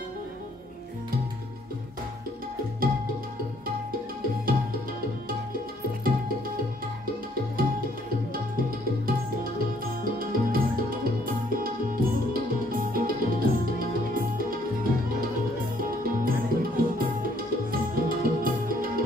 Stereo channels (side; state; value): both; normal; correlation 0.64